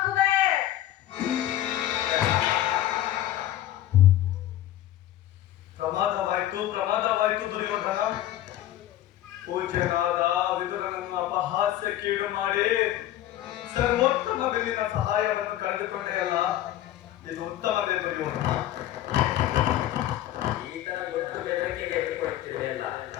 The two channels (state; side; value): quieter; right; 13.2 dB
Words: ಪ್ರಮಾದವಾಯ್ತು ದುರ್ಯೋಧನ. ಪೂಜ್ಯನಾದ ವಿದುರನನ್ನು ಅಪಹಾಸ್ಯಕ್ಕೀಡು ಮಾಡಿ ಸರ್ವೋತ್ತಮ ಬಿಲ್ಲಿನ ಸಹಾಯವನ್ನು ಕಳೆದುಕೊಂಡೇ ಅಲ್ಲ, ಇದು ಉತ್ತಮವೇ ದುರ್ಯೋಧನ? ಈತನ ಗೊತ್ತು ಬೆದರಿಕೆಗೆ ಎದುರುಕೊಡುತ್ತಿರುವೆ ಅಲ್ಲ,